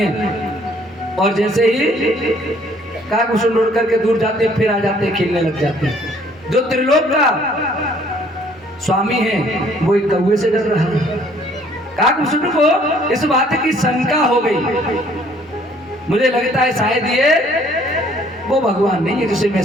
और जैसे ही काकभूषुंड उड़ करके दूर जाते हैं, फिर आ जाते हैं, खेलने लग जाते हैं। जो त्रिलोक का स्वामी है वो एक कौवे से डर रहा है। काकभूषुंड को इस बात की शंका हो गई, मुझे लगता है शायद ये वो भगवान नहीं है जिसे मैं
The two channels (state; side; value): normal; both; correlation 0.60